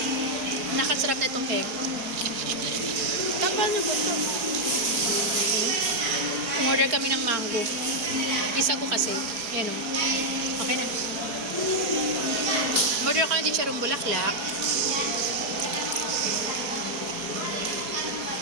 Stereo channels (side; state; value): left; late; 4.8 ms